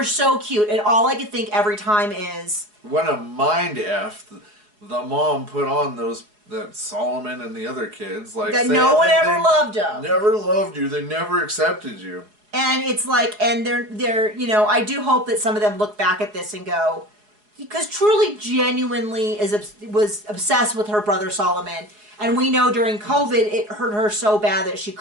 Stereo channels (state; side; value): late; left; 4.8 ms